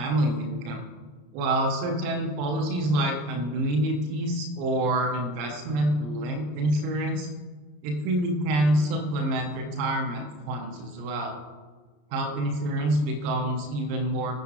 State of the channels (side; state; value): left; late; 34 ms